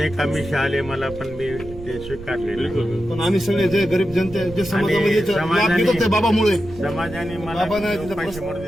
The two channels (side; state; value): right; noise; rumble, 15 dB below the sound